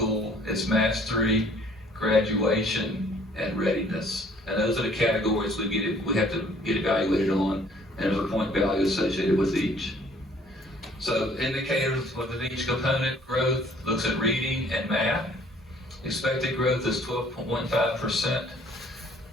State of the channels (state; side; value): normal; both; correlation 0.58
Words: it's mastery, graduation, and readiness. And those are the categories we have to get evaluated on, and there's a point value associated with each. So indicators within each component: growth looks at reading and math. Expected growth is 12.15%.